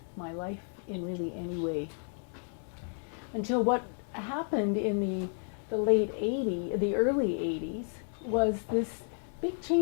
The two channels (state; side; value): silent; right; 56 dB below the other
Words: my life in really any way. Until what happened in the early 80s was this big